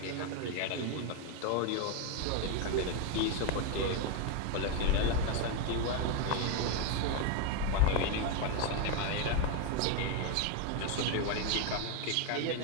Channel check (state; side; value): different; both; correlation 0.02